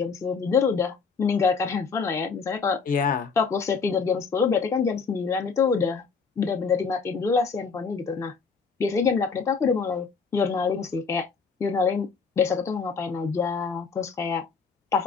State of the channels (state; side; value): quieter; right; 5.2 dB